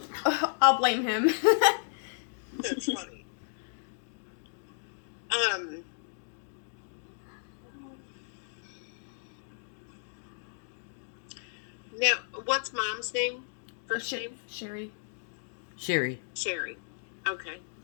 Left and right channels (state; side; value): silent; right; digital silence